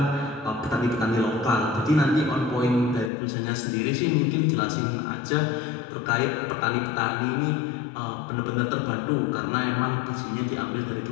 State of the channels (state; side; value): drops out; right; at 3.1 s